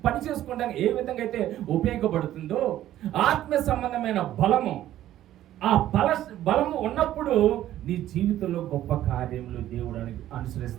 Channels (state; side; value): quieter; left; 13.0 dB